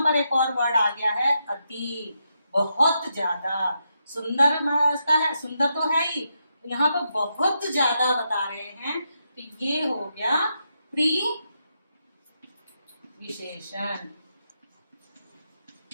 पर एक और वर्ड आ गया है, अति, बहुत ज्यादा। सुंदर का है, सुंदर तो है ही, यहाँ पर बहुत ज्यादा बता रहे हैं, तो ये हो गया प्री विशेषण।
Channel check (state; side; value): inverted; both; correlation -0.83